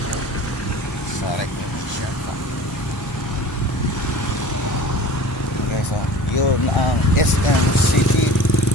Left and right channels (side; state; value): both; normal; correlation 0.41